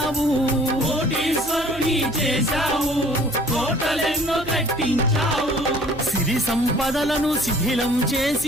కోటీశ్వరుని చేశావు, కోటలెన్నో కట్టించావు. సిరి సంపదలను శిథిలం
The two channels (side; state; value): right; noise; hum, 17 dB below the sound